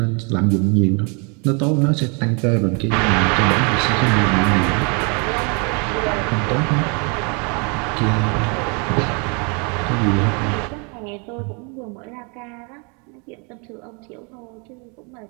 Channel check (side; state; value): left; quieter; 34.2 dB